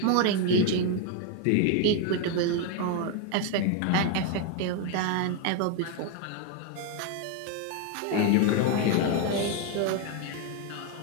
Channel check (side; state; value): both; different; correlation 0.01